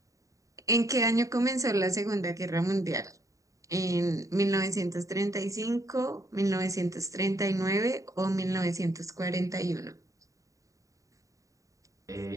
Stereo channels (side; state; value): left; late; 0.16 ms